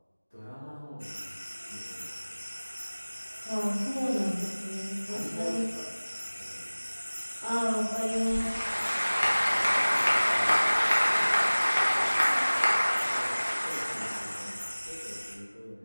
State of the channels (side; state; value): both; inverted; correlation -1.00